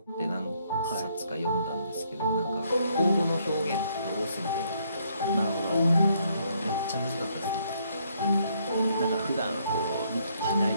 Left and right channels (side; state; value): both; inverted; correlation -0.70